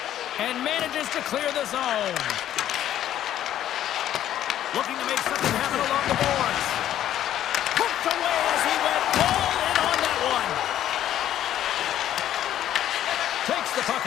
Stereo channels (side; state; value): right; quieter; 11.7 dB